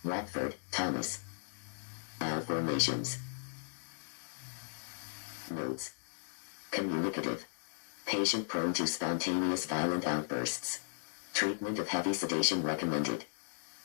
Watford, Thomas. Formations. Notes. Communicative. Patient prone to spontaneous violent outbursts. Treatment of heavy sedation recommended.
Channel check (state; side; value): silent; right; digital silence